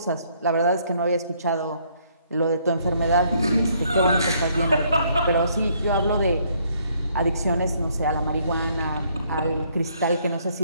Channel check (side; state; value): both; inverted; correlation -0.67